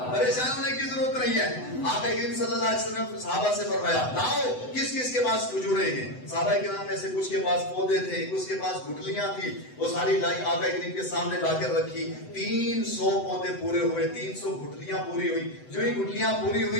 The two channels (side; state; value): right; late; 7.9 ms